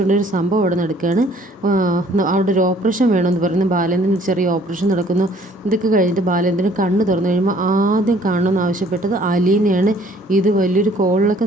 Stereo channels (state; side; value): normal; both; correlation 0.58